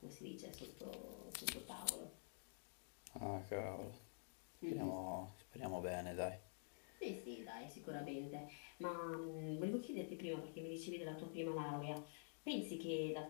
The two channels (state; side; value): silent; right; digital silence